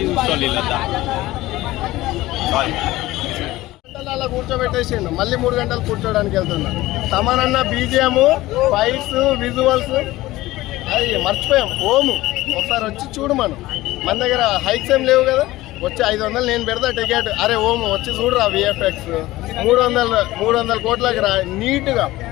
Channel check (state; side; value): quieter; right; 17.6 dB